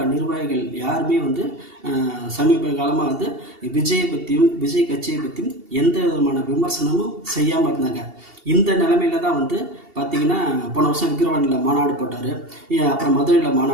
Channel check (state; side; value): late; left; 2.7 ms